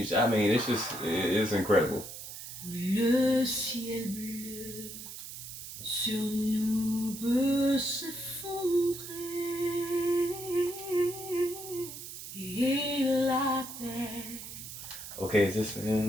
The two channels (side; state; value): right; noise; hiss, 11 dB below the sound